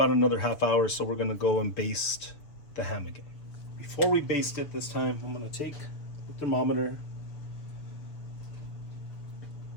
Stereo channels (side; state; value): right; late; 6.9 ms